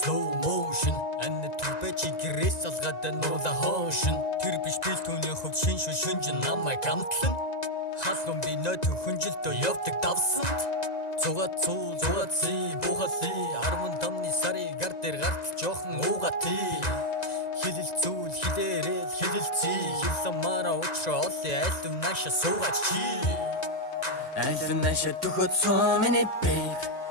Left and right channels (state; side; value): late; right; 1.9 ms